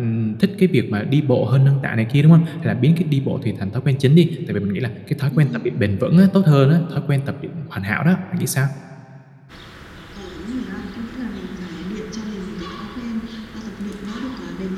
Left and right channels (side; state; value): both; identical; correlation 1.00